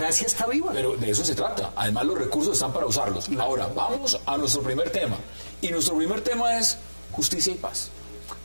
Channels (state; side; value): inverted; both; correlation -1.00